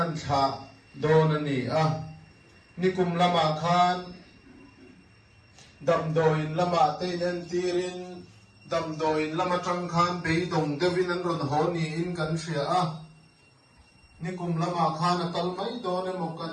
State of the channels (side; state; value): both; identical; correlation 1.00